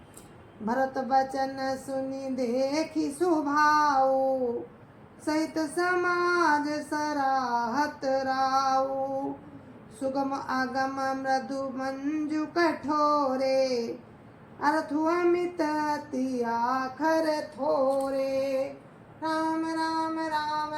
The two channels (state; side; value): identical; both; correlation 1.00